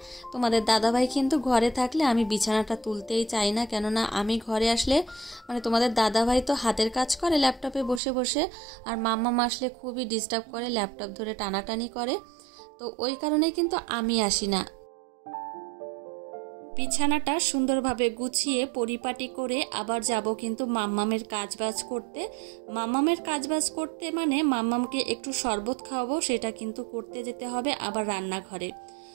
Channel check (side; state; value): left; drops out; at 8.0 s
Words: তোমাদের দাদাভাই কিন্তু ঘরে থাকলে আমি বিছানাটা তুলতেই চাই না, কেননা আমি ঘরে আসলে মানে তোমাদের দাদাভাই তো হাতের কাজ করে ল্যাপটপে বসে বসে, আর মাম্মাম আসলে খুবই ডিস্টার্ব করে, ল্যাপটপ ধরে টানাটানি করে, তো ওই কারণেই কিন্তু আমি আসি না। বিছানাটা সুন্দরভাবে গুছিয়ে পরিপাটি করে আবার যাব কিন্তু মাম্মামের কাজবাজ করতে। মাম্মামের কাজবাজ করতে মানে মাম্মামকে একটু শরবত খাওয়াবো, সেটা কিন্তু করতে যেতে হবে আবার রান্নাঘরে।